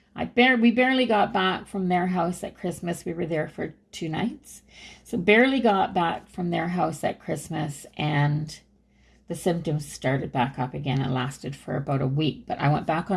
we barely got back from their house at Christmas. We were there for 2 nights. So barely got back from their house at Christmas, and the symptoms started back up again and lasted for about a week. But I went back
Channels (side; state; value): both; identical; correlation 1.00